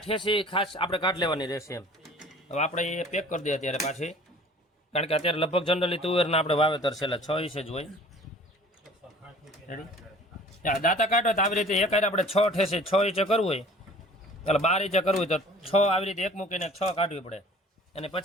ઠેસી ખાસ આપણે કાઢી લેવાની રહેશે એમ. હવે આપણે એ પેક કરી દઈએ અત્યારે પાછી કારણ કે અત્યારે લગભગ જનરલી તુવેરના આપણે વાવેતર છેલ્લા 6 ઇંચ જ હોય. રેડી દાંતા કાઢો તો આવી રીતે એક આપણે 6 ઠેસે 6 ઇંચે કરવું હોય એટલે 12 ઇંચે કરવું હોય તો 6 આવી રીતે એક મૂકીને 6 કાઢવી પડે અને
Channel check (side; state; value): both; normal; correlation 0.49